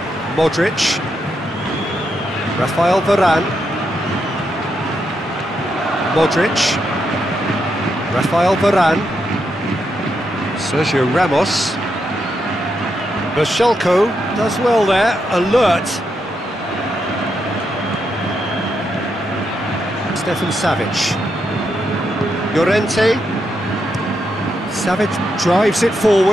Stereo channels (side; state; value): both; normal; correlation 0.82